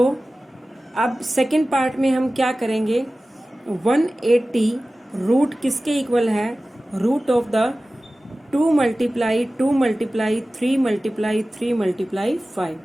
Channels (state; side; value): normal; both; correlation 0.96